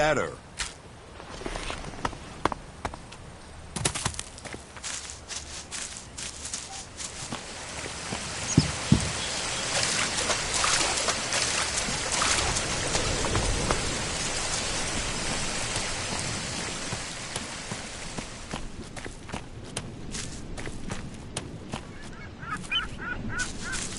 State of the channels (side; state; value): both; identical; correlation 1.00